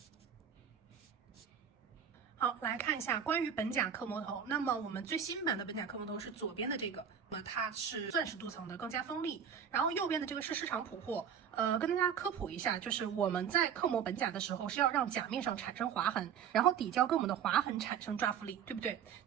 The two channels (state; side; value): quieter; left; 8.0 dB